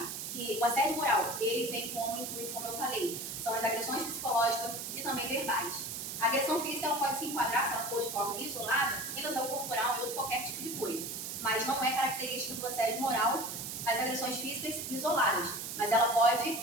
que o assédio moral, ele tem como intuito, como eu falei, são as agressões psicológicas e também verbais. A agressão física, ela pode se enquadrar, se ela for de forma isolada, em lesão corporal ou qualquer tipo de coisa, mas não é característica do assédio moral as agressões físicas isoladas, mas ela pode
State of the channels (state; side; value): noise; right; hiss, 6 dB below the sound